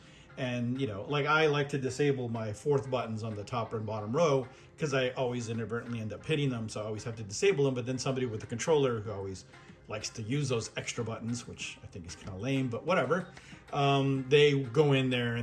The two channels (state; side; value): identical; both; correlation 1.00